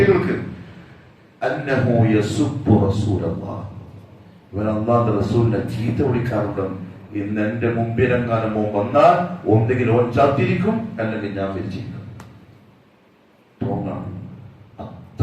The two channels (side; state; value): both; identical; correlation 1.00